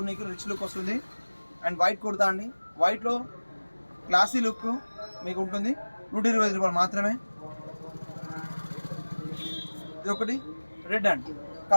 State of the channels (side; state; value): both; inverted; correlation -1.00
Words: రిచ్ లుక్ వస్తుంది. అండ్ వైట్ కుర్తా అండి, వైట్లో క్లాసీ లుక్ మీకు ఉంటుంది. 125 రూపాయలు మాత్రమే. ఇది ఒకటి రెడ్ అండి,